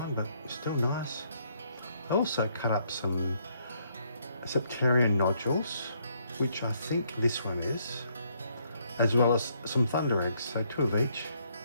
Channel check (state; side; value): inverted; both; correlation -0.71